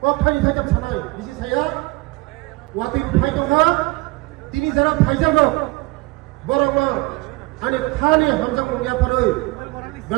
ফাইনি थाइजाम सानाय बिसि साया वाति फाइ दङ तिनि जरा फाइजागो बरंनो आनि थानि हामजा मुंगियाफोरै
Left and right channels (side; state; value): left; quieter; 23.0 dB